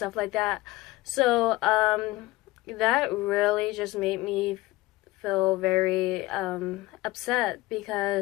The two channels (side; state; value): right; quieter; 18.4 dB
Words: like that. So that really just made me feel very upset